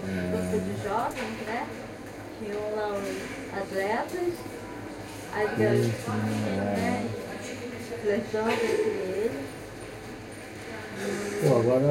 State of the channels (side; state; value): both; identical; correlation 1.00